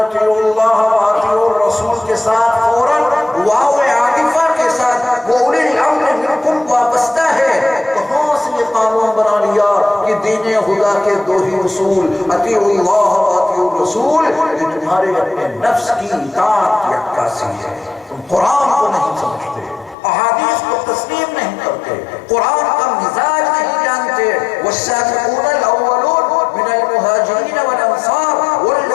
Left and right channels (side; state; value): right; drops out; at 20.0 s